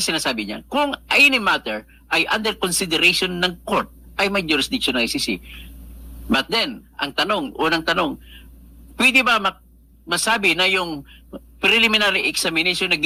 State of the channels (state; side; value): identical; both; correlation 1.00